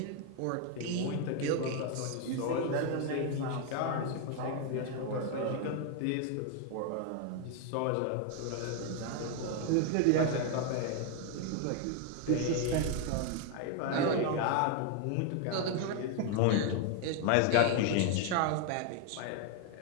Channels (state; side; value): different; both; correlation 0.01